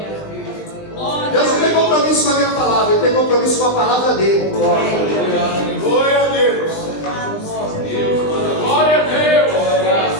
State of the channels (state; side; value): late; right; 20 ms